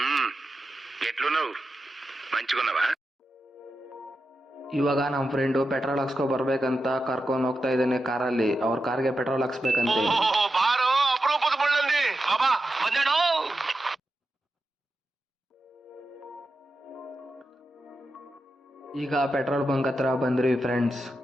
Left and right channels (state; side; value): normal; both; correlation 0.89